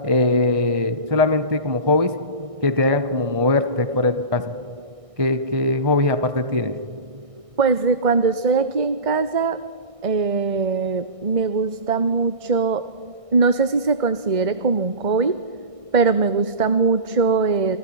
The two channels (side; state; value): left; late; 1.6 ms